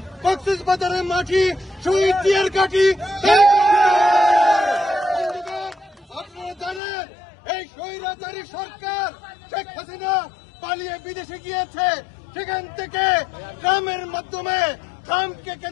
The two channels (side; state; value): right; drops out; at 6.8 s